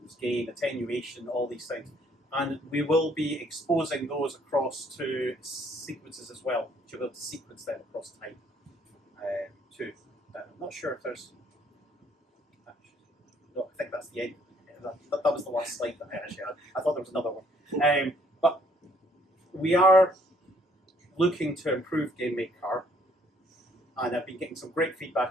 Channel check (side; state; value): both; normal; correlation 0.64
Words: gain, attenuation, all these things. And we will be exposing those across to sequences as well. You'll be able to sequence them across time too. I'm not sure if there's... No, I think that's the end. That was the last slide that I actually had. I thought there was another one. But we are looking to improve GameMaker, and I've been getting some great